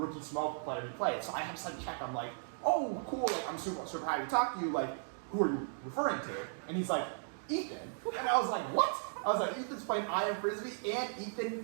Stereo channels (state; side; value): silent; left; digital silence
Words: Smoke player he played. So I have to check, I'm like, oh, cool, like, I'm super happy to talk to you, like, who are you referring to? And he's like, Ethan. And I was like, what? I was like, Ethan's playing IM Frisbee, and